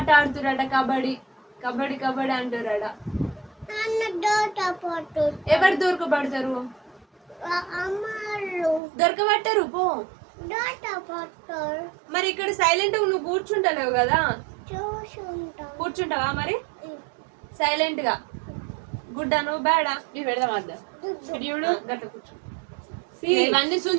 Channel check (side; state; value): left; drops out; at 8.8 s